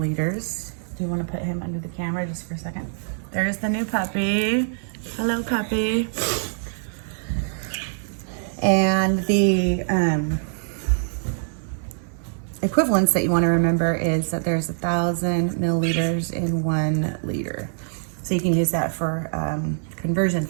Do you want to put him under the camera just for a second? There's the new puppy. Hello, puppy. And the equivalence that you want to remember is that there's 1,000 milliliters in 1 liter. So you can use that for conversion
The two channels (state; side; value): silent; left; digital silence